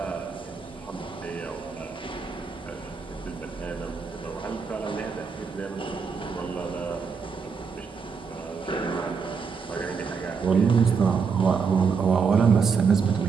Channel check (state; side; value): quieter; left; 5.6 dB